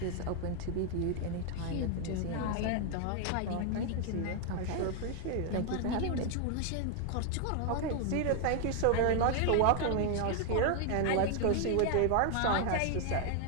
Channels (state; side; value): different; both; correlation 0.00